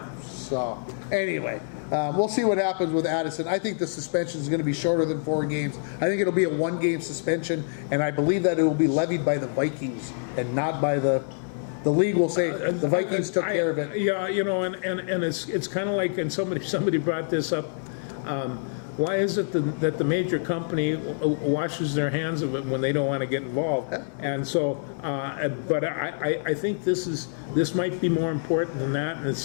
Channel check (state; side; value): silent; right; digital silence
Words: So anyway, we'll see what happens with Addison. I think the suspension is going to be shorter than 4 games. I think it'll be a 1-game suspension, and I believe that it will be levied by the Vikings and not by the league. Will say the Vikings took care of it. Yeah, you know, and it's kind of like, and somebody brought this up. Why is it that the major company washes their hands of it when they don't want to get involved? And so, but I think this might be more important than that. And the